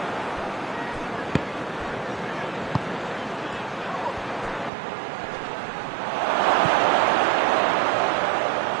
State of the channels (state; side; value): drops out; left; at 4.7 s